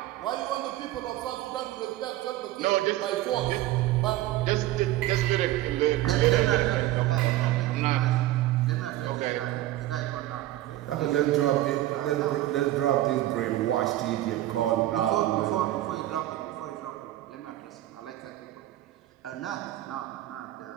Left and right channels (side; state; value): left; quieter; 15.3 dB